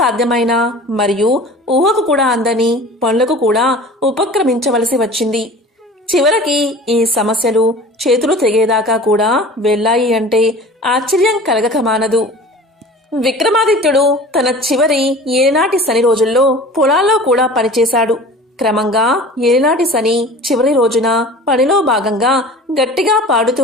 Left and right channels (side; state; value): both; normal; correlation 0.41